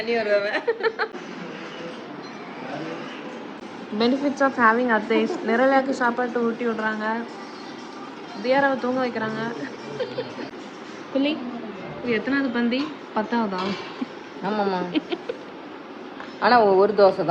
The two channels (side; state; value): both; identical; correlation 1.00